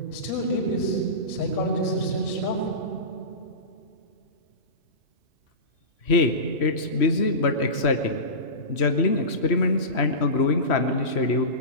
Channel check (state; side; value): late; right; 3.1 ms